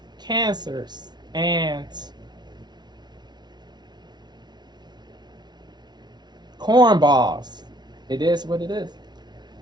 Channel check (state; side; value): late; left; 0.20 ms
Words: cancers and cornballs. It is what it is.